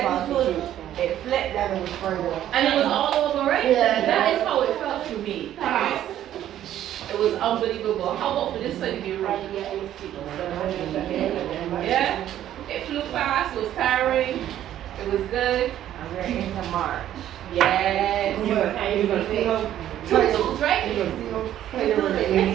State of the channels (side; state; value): left; quieter; 11.8 dB